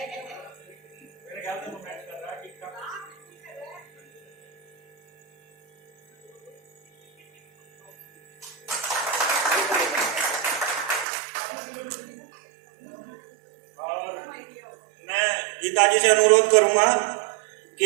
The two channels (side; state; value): left; drops out; at 11.1 s